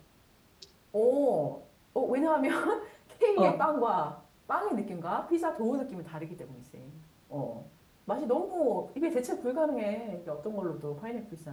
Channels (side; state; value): both; identical; correlation 1.00